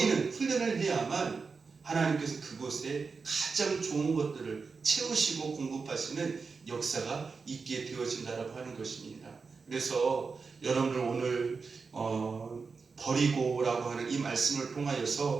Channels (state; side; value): quieter; left; 4.8 dB